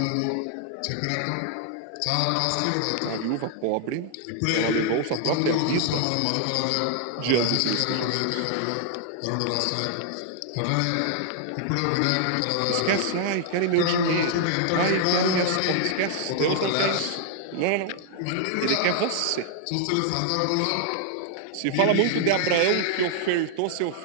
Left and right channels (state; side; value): different; both; correlation 0.00